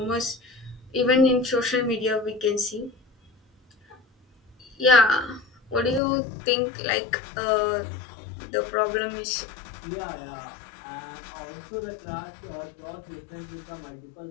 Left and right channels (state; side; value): drops out; right; at 6.0 s